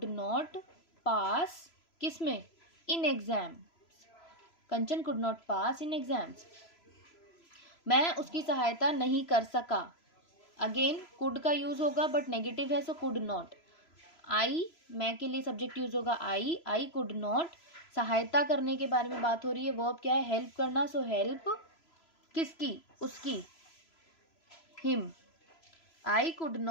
नॉट पास, किसमें, in exam. Kanchan could not pass in exams. मैं उसकी सहायता नहीं कर सका, अगेन कुड का यूज होगा बट नेगेटिव है सो कुड नॉट। आई, मैं के लिए सब्जेक्ट यूज होगा आई कुड नॉट। सहायता करने के बारे में बात हो रही है, वर्ब क्या है, हेल्प करना, सो हेल्प किसकी, उसकी, him. I could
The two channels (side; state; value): right; late; 3.0 ms